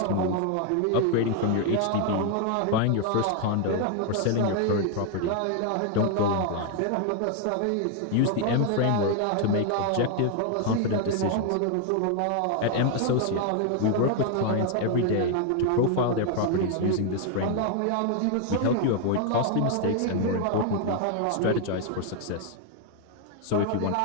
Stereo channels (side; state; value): both; different; correlation 0.00